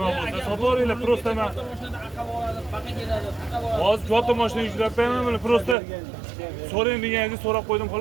bo'lsa sotaveringlar, prosta men hozir katta mashina yuklab beraman, mana prosta so'rang deganingizni so'rab qo'ydim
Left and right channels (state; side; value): drops out; left; at 5.8 s